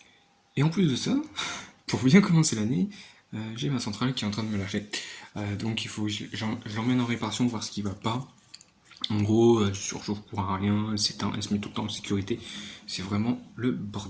Et en plus de ça, pour bien commencer l'année, j'ai ma centrale qui est en train de me lâcher. Donc il faut que je l'emmène en réparation, voir ce qui va pas. En gros, elle surchauffe pour un rien, elle s'éteint, elle se met tout le temps en sécurité. C'est vraiment le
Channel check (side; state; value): both; identical; correlation 1.00